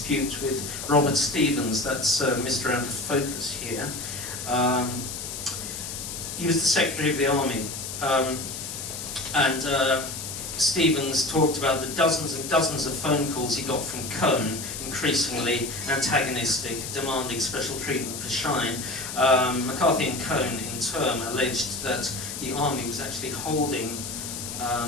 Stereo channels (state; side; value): noise; left; hiss, 7 dB below the sound